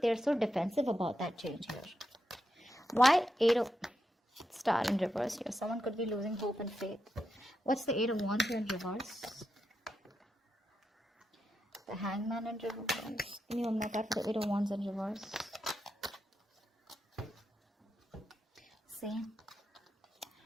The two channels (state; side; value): normal; both; correlation 0.86